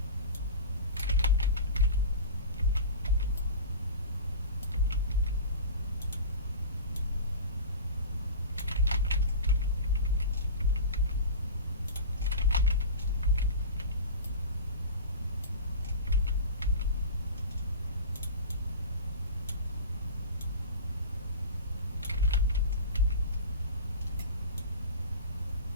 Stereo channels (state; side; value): inverted; both; correlation -0.34